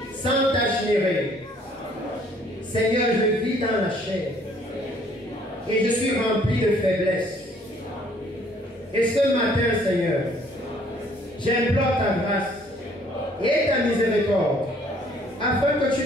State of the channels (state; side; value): normal; both; correlation 0.61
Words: sans tache ni règle. Seigneur, je vis dans la chair et je suis rempli de faiblesse. Et ce matin, Seigneur, j'implore ta grâce et ta miséricorde afin que